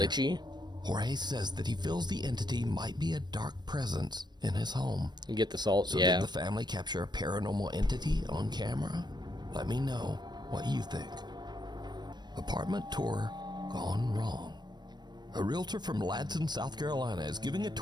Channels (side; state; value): left; late; 0.21 ms